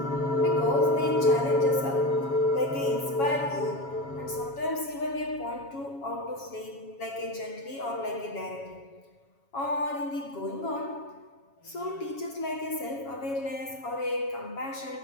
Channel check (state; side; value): late; right; 7.3 ms